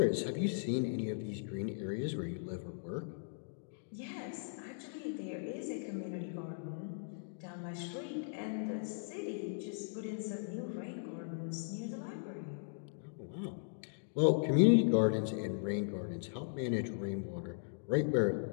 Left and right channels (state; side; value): silent; right; digital silence